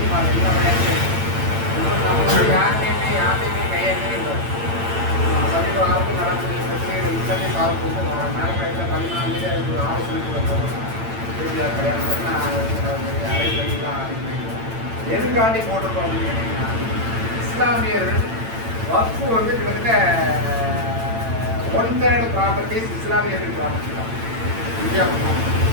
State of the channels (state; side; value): late; left; 8.9 ms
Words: எல்லா விளையாட்டு நம்மளுடைய யார்ட்டையுமே கையெழுத்தே இல்லை. சமீப காலத்தில் நடக்கூடிய பிரச்சனைகள் இத்தனை சால்வ் மேலக்கடையில் 14 அதுக்கு ஒரு ஆலோசனைக்குள்ள போகணும். இறுதியாக கல்யாணம் நான் அரைப்படிலாம் ஆரம்பிக்கிறேன். எதுக்காண்டி போட்டிருக்கோம் அப்படின்னு கேட்டிங்கன்னா, இஸ்லாமியர்கள் வக்ஃபு வந்து கிட்டத்தட்ட 1/3 ப்ராப்பர்ட்டிஸ் இஸ்லாமியர்கள் ப்ராப்பர்ட்டி தான். இந்தியா